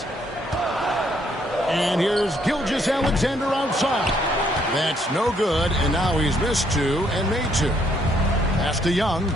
And here's Gilgeous-Alexander outside. That's no good, and now he's missed 2 and made 2. Pass to Young.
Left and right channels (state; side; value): normal; both; correlation 0.70